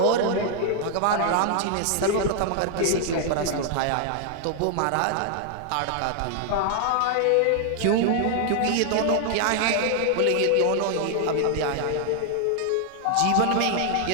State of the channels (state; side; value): different; both; correlation 0.00